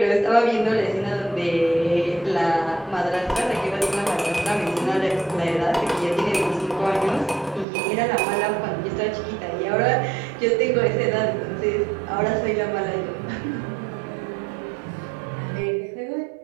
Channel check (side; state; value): left; drops out; at 7.7 s